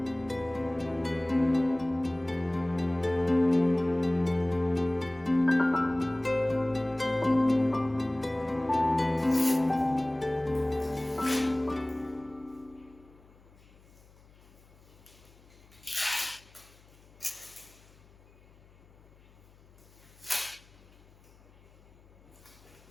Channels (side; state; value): left; noise; hum, 26 dB below the sound